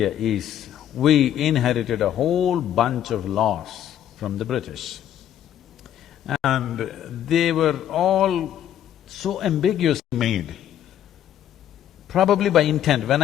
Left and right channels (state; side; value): quieter; right; 10.8 dB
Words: is, we inherited a whole bunch of laws from the British. And they were all so ambiguously made, probably by intent. When